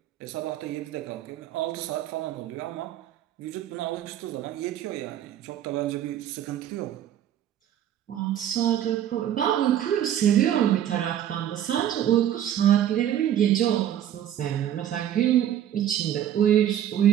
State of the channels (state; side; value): quieter; left; 10.9 dB